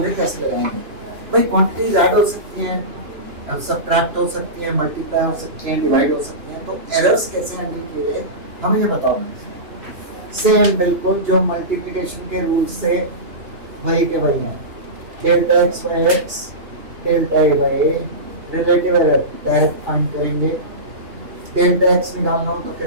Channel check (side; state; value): left; late; 2.9 ms